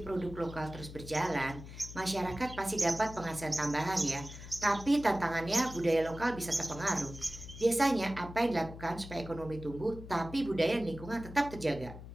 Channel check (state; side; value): noise; left; hum, 13 dB below the sound